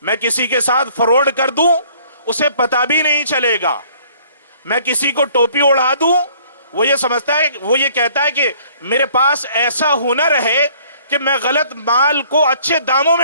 میں کسی کے ساتھ فراڈ کر دوں اسے پتہ بھی نہیں چلے گا، میں کسی کو ٹوپی اڑا دوں، وہ یہ سمجھتا ہے، وہ یہ کہتا ہے کہ میرے پاس ایسا ہنر ہے کہ میں غلط مال کو اچھے داموں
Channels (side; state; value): both; inverted; correlation -0.58